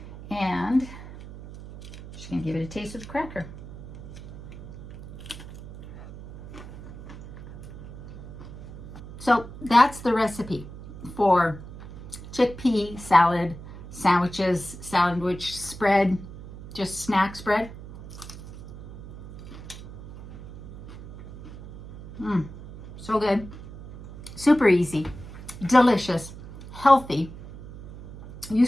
and just gonna give it a taste of the cracker. So that's the recipe for chickpea salad sandwiches, sandwich spread, just snack spread. So good. Super easy, delicious, healthy. You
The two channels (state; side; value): noise; right; hum, 14 dB below the sound